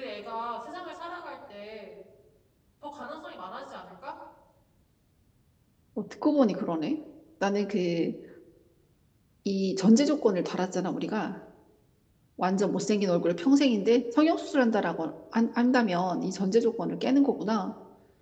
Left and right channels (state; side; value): identical; both; correlation 1.00